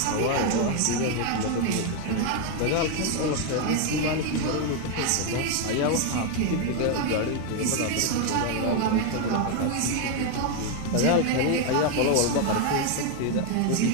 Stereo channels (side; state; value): both; different; correlation 0.01